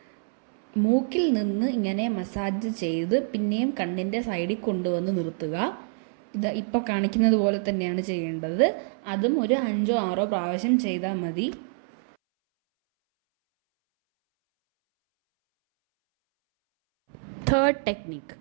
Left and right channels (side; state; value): left; silent; 61 dB below the other